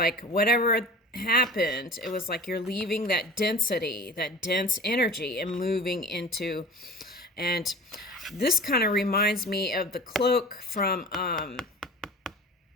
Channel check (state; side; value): normal; both; correlation 0.37